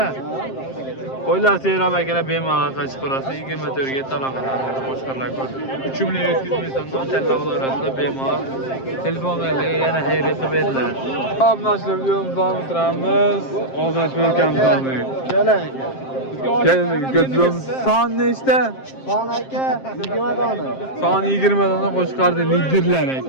Qo'ylar seyrab akalar bemalol aloqa chiqarasiz. 24 ga talaqadan qo'chqarlar ko'rib. 3 million 700 ming so'mdan tanlab olasizlar bemalol. Telefonlarga yana xayriya qilib beriladi. Obunachilar videomizni davom ettiramiz. Ozodbek akamiz olmaydi. Geldik, götürüyorum. Son nechta? Son aka 20 dona. Son 20 dona qo'shqardi liderlar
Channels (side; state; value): right; late; 7.6 ms